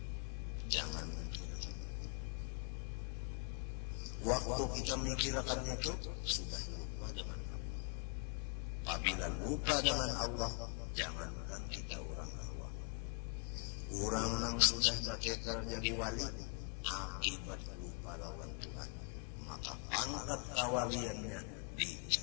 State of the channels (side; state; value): right; quieter; 36.7 dB